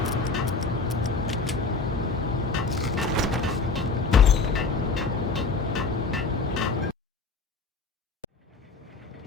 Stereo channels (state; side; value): quieter; right; 4.1 dB